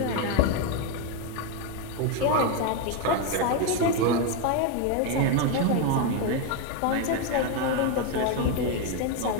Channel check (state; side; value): different; both; correlation 0.02